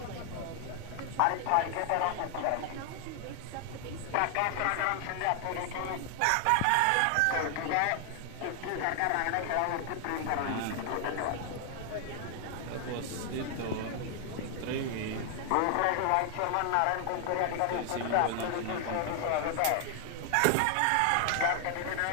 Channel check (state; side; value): different; both; correlation 0.00